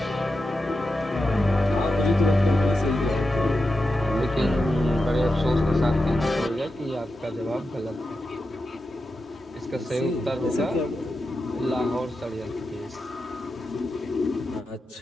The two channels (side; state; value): both; normal; correlation 0.89